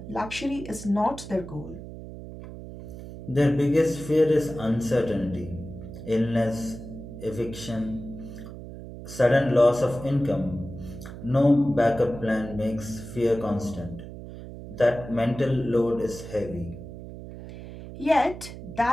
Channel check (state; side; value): noise; right; hum, 12 dB below the sound